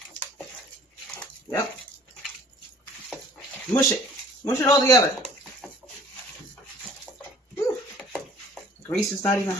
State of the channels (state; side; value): normal; both; correlation 0.52